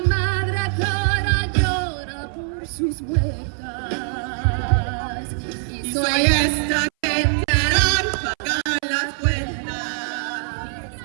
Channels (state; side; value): silent; left; 59 dB below the other